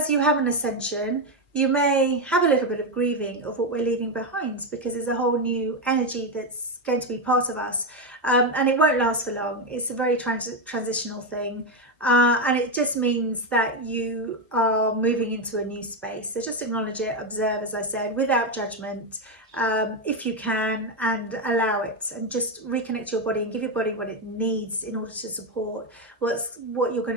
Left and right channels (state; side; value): normal; both; correlation 0.08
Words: you have an ascension, you may have a little bit of grieving of what we're leaving behind, because there's a whole new energy that's going to be part of us, and it won't last for long. It's a very transitional thing, and it just means that you are moving into a new space. So just acknowledge it, observe, as I said, without judgment, if you can, and allow it, and just reconnect your body and give your body what it needs in order to support what you're